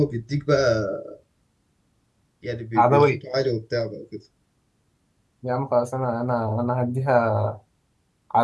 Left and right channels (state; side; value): identical; both; correlation 1.00